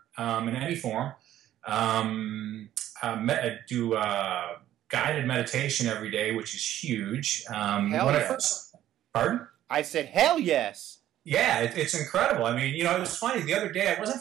in any form. I do guided meditation every day, which is huge. Pardon? I said, hell yes. Yeah, it's incredible. I mean, it was funny. The other day I wasn't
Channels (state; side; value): quieter; left; 12.5 dB